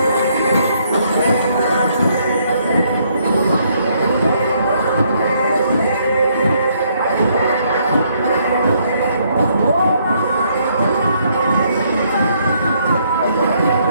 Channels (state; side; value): inverted; both; correlation -0.70